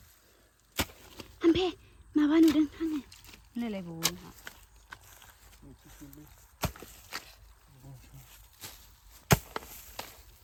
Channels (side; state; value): both; identical; correlation 1.00